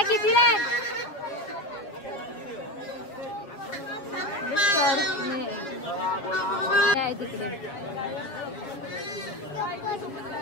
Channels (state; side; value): late; right; 7.3 ms